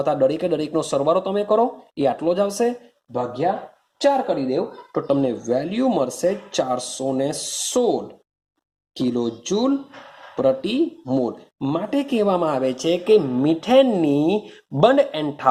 તો દરેકનો સરવાળો તમે કરો એ આટલો જ આવશે, ભાગ્યા 4 કરી દેવ તો તમને વેલ્યુ મળશે 416 કિલો જૂલ પ્રતિ મોલ. માટે કહેવામાં આવે છે કે મિથેનની બંધ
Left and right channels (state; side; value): identical; both; correlation 1.00